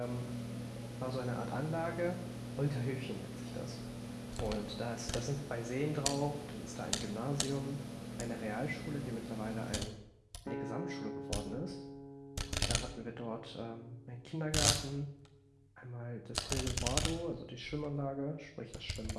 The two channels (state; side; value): identical; both; correlation 1.00